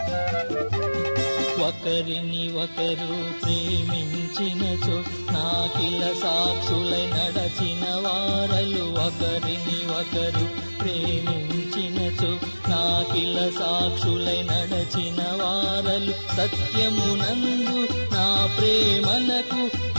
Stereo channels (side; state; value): both; inverted; correlation -1.00